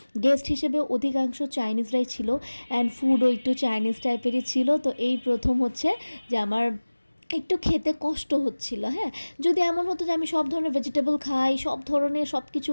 গেস্ট হিসেবে অধিকাংশ চাইনিজরাই ছিল, অ্যান্ড ফুডও একটু চাইনিজ টাইপেরই ছিল। তো এই প্রথম হচ্ছে যে আমার একটু খেতে কষ্ট হচ্ছিল। হ্যাঁ, যদি এমন হতো যে আমি সব ধরনের ভেজিটেবল খাই, সব ধরনের সব কিছু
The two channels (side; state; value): both; inverted; correlation -1.00